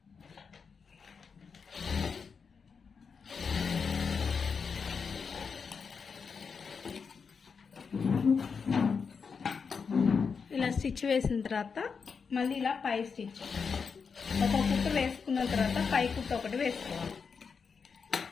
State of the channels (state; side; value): quieter; right; 5.7 dB